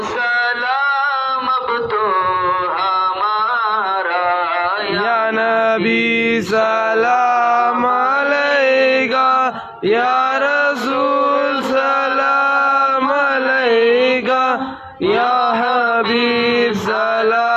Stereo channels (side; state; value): both; identical; correlation 1.00